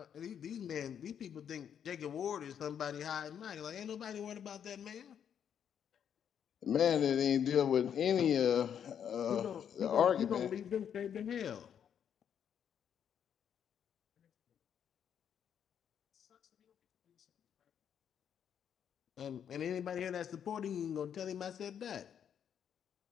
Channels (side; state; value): right; quieter; 8.5 dB